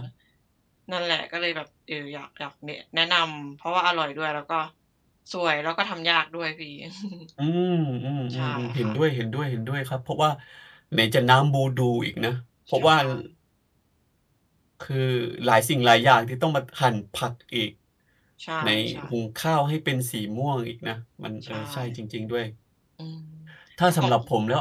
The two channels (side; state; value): both; identical; correlation 1.00